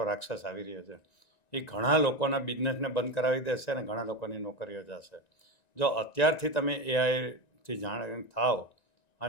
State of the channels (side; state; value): right; late; 1.9 ms